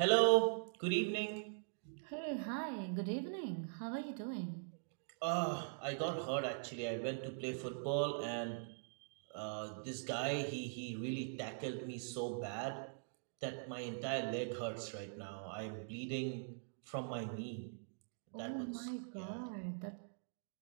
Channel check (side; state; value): left; silent; digital silence